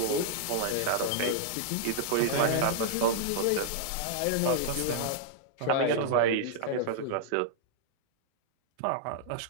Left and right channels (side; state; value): both; different; correlation -0.01